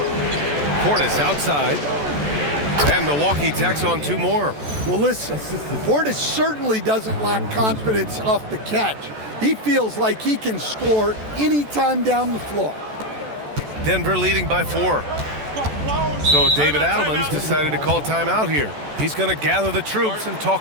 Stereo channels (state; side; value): late; left; 14 ms